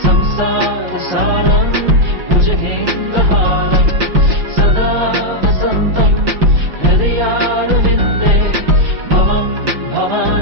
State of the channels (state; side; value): late; left; 5.7 ms